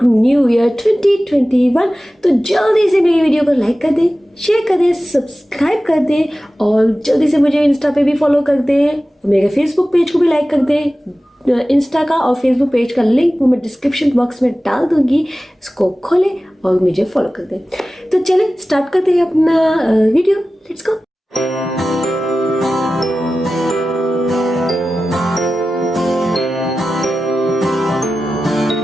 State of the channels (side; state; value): both; normal; correlation 0.95